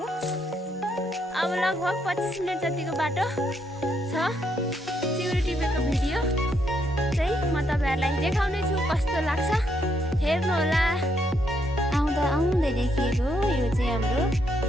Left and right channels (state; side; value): normal; both; correlation 0.75